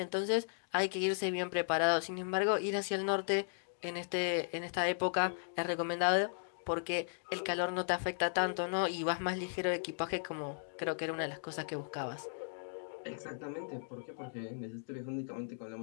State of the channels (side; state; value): right; silent; digital silence